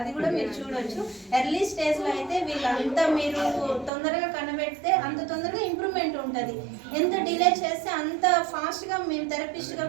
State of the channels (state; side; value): drops out; left; at 3.9 s